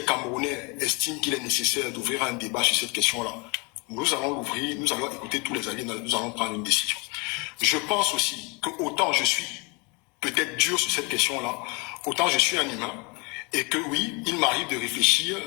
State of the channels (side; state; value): right; quieter; 30.1 dB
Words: Camerounais estiment qu'il est nécessaire d'ouvrir un débat sur cette question-là, nous allons l'ouvrir, nous allons écouter tous les alliés, nous allons prendre une décision. Je pense aussi que autant je suis peut-être dur sur cette question-là, autant je suis un humain, et que oui, il m'arrive de réfléchir,